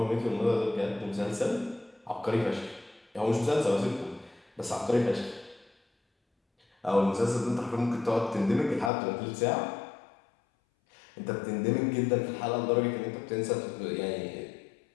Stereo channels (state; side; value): drops out; right; at 8.9 s